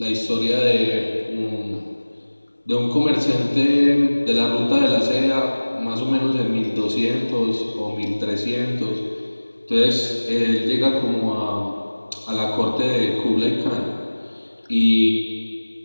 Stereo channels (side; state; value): both; inverted; correlation -1.00